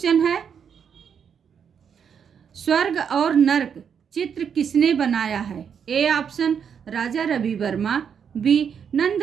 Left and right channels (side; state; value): left; quieter; 7.4 dB